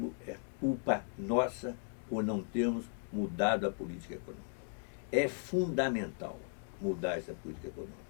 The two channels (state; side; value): silent; right; 53 dB below the other